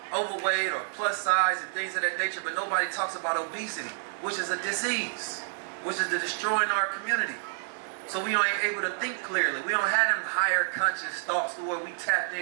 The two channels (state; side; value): silent; left; digital silence